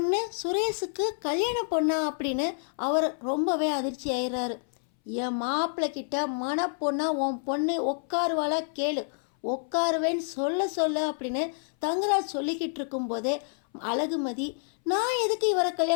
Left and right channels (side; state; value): right; silent; 59 dB below the other